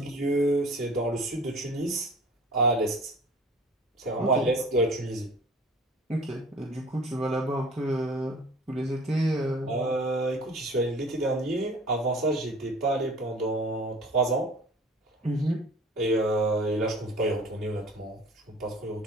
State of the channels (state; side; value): normal; both; correlation 0.45